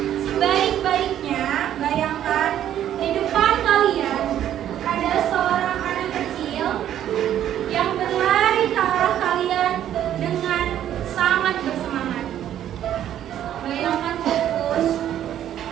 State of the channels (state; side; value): quieter; left; 11.0 dB